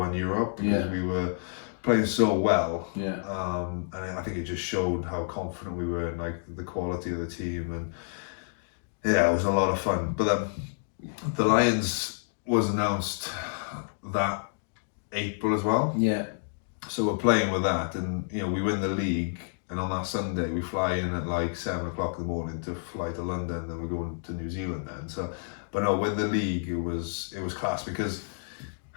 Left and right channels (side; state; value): right; silent; digital silence